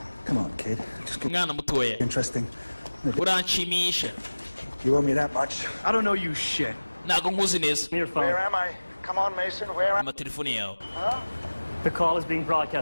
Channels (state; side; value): inverted; both; correlation -1.00